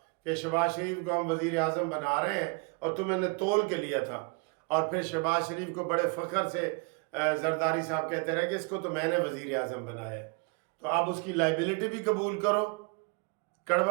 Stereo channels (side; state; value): left; quieter; 30.9 dB